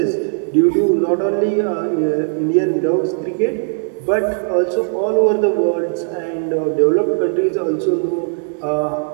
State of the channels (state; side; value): silent; left; 67 dB below the other